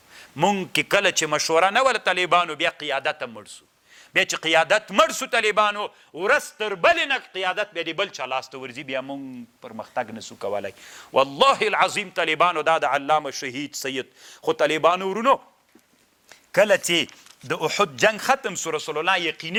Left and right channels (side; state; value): both; identical; correlation 1.00